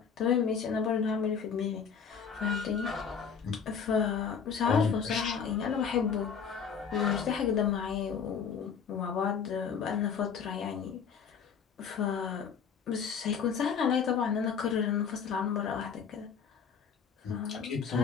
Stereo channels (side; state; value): right; quieter; 6.7 dB